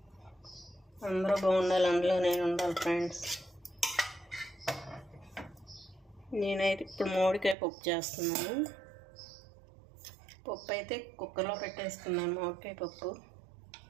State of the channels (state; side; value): drops out; left; at 7.6 s